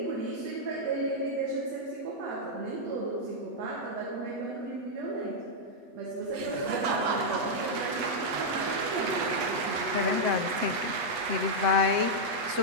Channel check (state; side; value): late; left; 8.4 ms